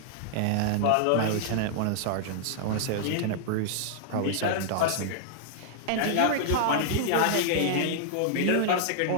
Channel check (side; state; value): both; different; correlation -0.01